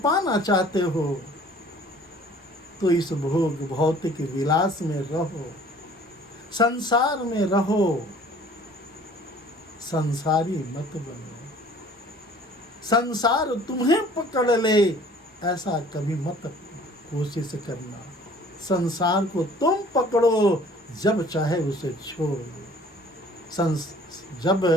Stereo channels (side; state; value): both; normal; correlation 0.51